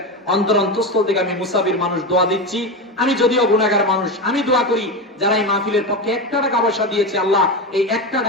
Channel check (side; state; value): both; normal; correlation 0.18